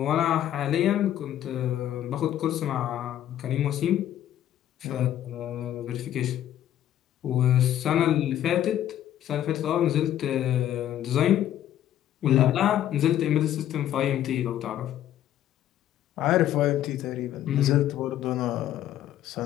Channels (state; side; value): quieter; right; 11.8 dB